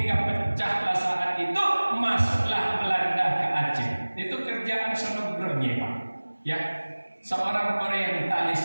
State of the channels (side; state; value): both; inverted; correlation -1.00